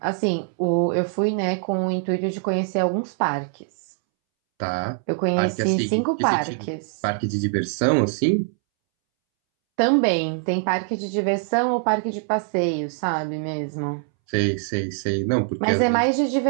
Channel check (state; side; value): silent; left; 63 dB below the other